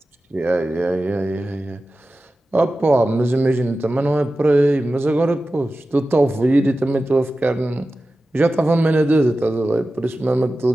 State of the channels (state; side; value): normal; both; correlation 0.94